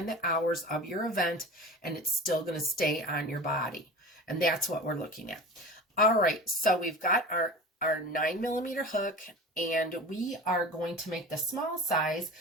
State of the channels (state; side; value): normal; both; correlation 0.35